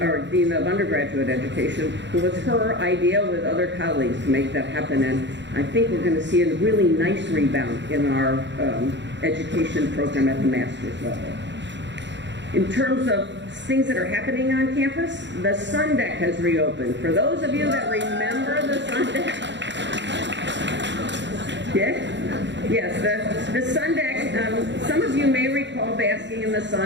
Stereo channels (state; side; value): late; left; 0.52 ms